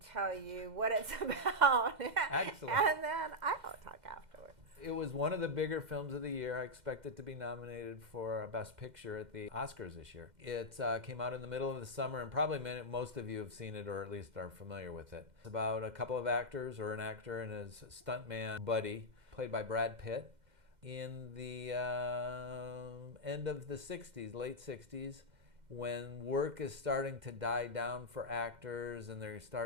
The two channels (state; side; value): late; left; 2.1 ms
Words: you what it's about. Excellent. And then I'll talk afterwards. It was one of the bigger films of the year. I expect it to be nominated for Best Picture at the Oscars this year. It came out in the middle of the summer, and probably most of you have seen it or at least are familiar with it. It's about a couple of actors, or an actor and his stuntman buddy, played by Brad Pitt, in the end of the 60s, late 60s, when work is starting to die down for actors and they're